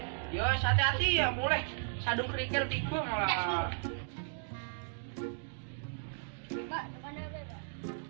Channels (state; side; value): silent; left; digital silence